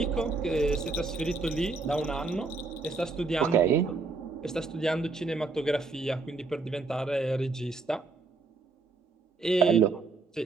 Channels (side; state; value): left; quieter; 3.9 dB